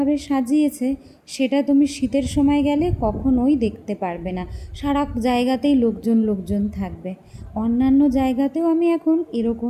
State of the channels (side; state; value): both; identical; correlation 1.00